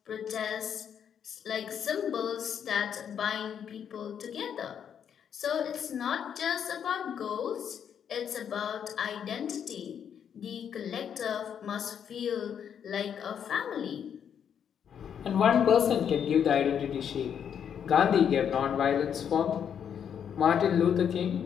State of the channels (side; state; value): right; quieter; 8.3 dB